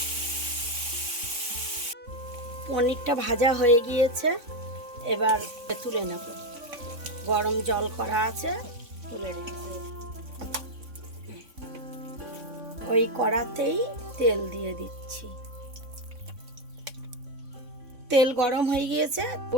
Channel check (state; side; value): late; left; 3.6 ms